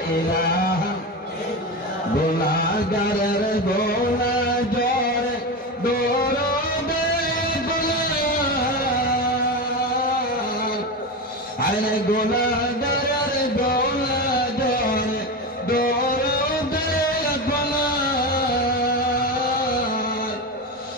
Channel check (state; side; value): normal; both; correlation 0.20